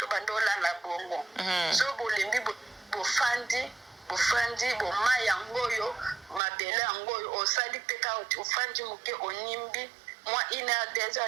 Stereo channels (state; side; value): drops out; left; at 6.4 s